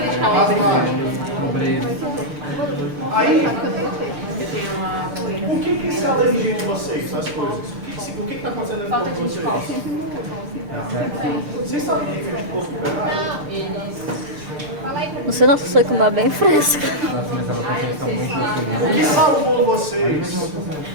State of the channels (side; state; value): left; late; 6.7 ms